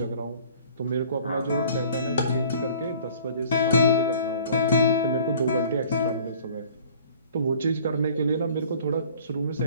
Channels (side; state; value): both; inverted; correlation -0.51